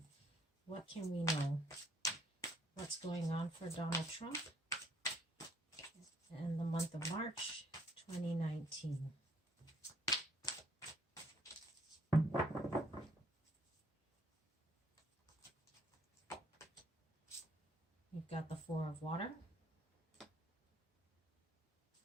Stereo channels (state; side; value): normal; both; correlation 0.65